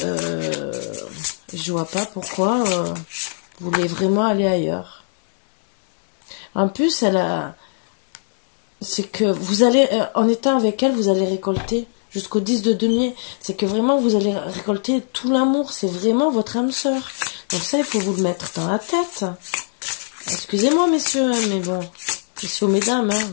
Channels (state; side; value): silent; right; digital silence